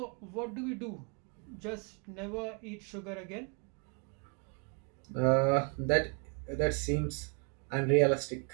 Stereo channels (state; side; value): quieter; left; 36.5 dB